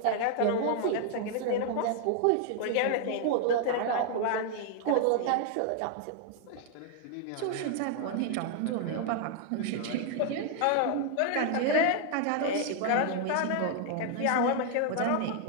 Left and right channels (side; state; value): both; different; correlation 0.00